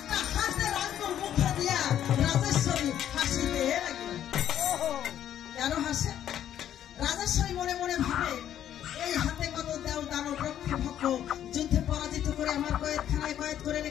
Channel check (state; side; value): quieter; right; 10.7 dB